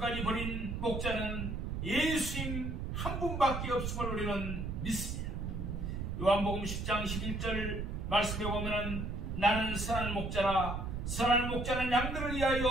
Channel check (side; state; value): right; noise; rumble, 3 dB below the sound